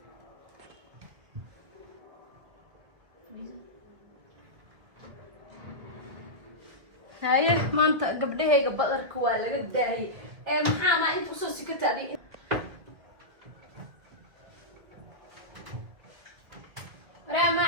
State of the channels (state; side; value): late; left; 2.1 ms